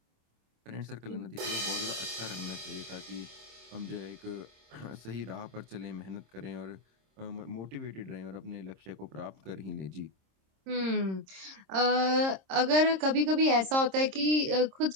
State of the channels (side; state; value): left; late; 26 ms